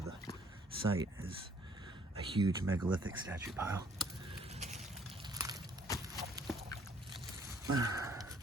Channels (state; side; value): normal; both; correlation 0.61